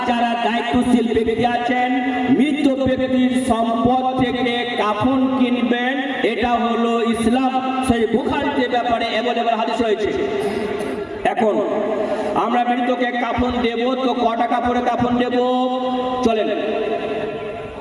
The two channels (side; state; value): both; identical; correlation 1.00